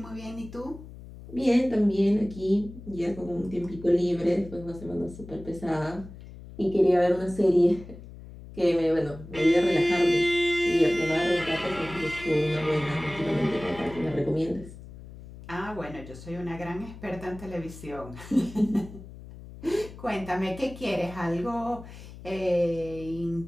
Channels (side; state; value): left; noise; hum, 16 dB below the sound